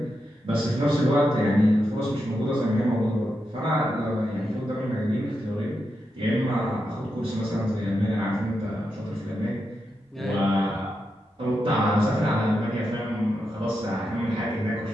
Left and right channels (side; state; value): both; normal; correlation 0.86